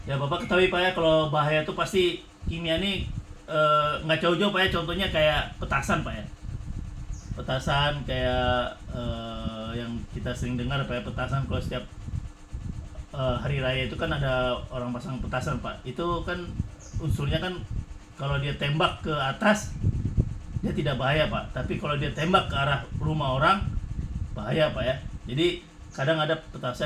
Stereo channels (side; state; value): both; identical; correlation 1.00